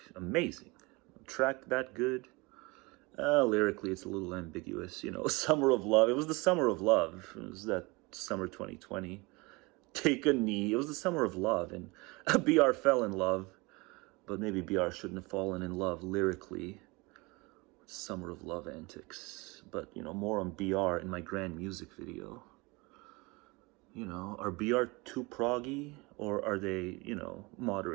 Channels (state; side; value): quieter; left; 25.3 dB